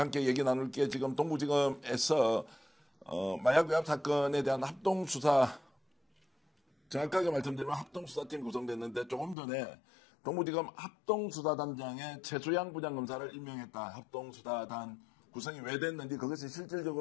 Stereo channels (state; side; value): drops out; right; at 9.3 s